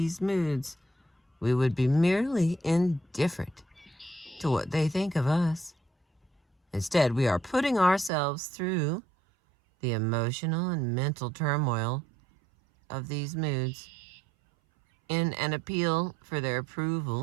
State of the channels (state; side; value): drops out; left; at 8.1 s